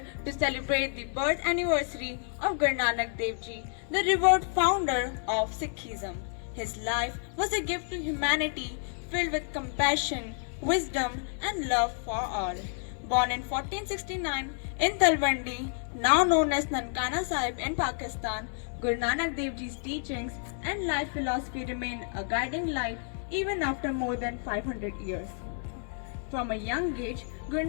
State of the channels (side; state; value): right; silent; 58 dB below the other